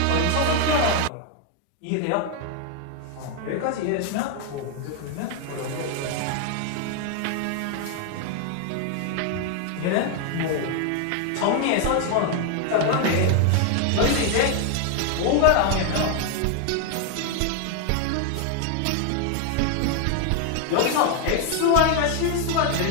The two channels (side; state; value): both; different; correlation 0.01